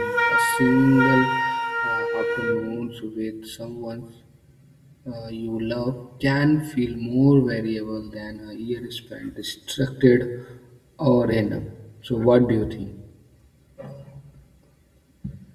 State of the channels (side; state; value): both; identical; correlation 1.00